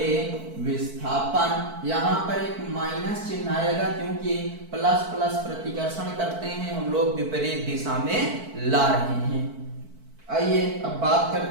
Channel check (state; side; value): late; left; 4.5 ms